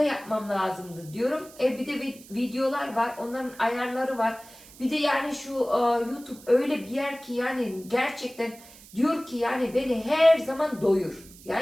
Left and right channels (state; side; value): noise; right; hiss, 21 dB below the sound